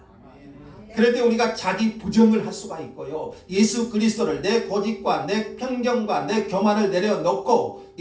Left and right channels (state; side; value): identical; both; correlation 1.00